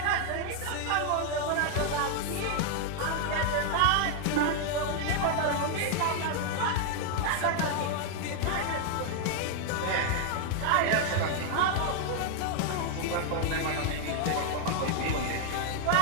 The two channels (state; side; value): different; both; correlation 0.00